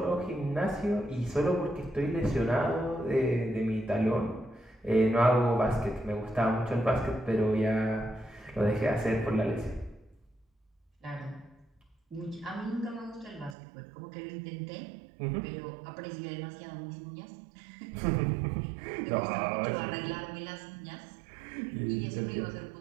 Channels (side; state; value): left; drops out; at 13.6 s